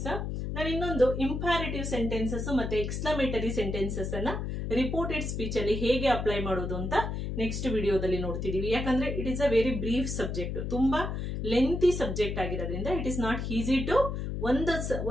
ನಾನು ಇನ್ನೊಂದು ಇಂಪ್ಯಾರೇಟಿವ್ ಸೆಂಟೆನ್ಸಸ್ ಮತ್ತೆ ಎಕ್ಸ್ಕ್ಲಮೇಟರಿ ಸೆಂಟೆನ್ಸಸ್ ಅನ್ನ ರಿಪೋರ್ಟೆಡ್ ಸ್ಪೀಚ್ ಅಲ್ಲಿ ಹೇಗೆ ಅಪ್ಲೈ ಮಾಡೋದು ಅಂತ ನೆಕ್ಸ್ಟ್ ವಿಡಿಯೋದಲ್ಲಿ ನೋಡ್ತಿದೀವಿ. ಯಾಕಂದ್ರೆ it is a very brief subject, ತುಂಬಾ ಲೆಂತಿ ಸಬ್ಜೆಕ್ಟ್ ಆಗಿರೋದ್ರಿಂದ it is not easy to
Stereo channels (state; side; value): noise; left; hum, 3 dB below the sound